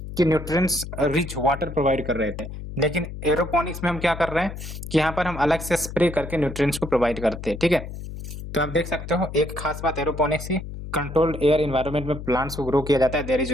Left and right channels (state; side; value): noise; left; hum, 9 dB below the sound